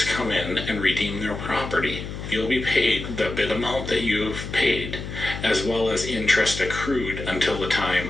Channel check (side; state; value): left; noise; hum, 8 dB below the sound